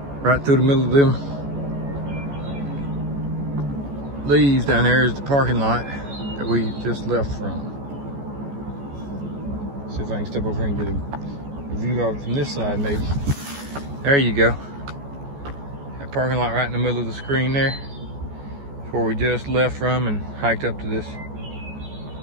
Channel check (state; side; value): late; left; 14 ms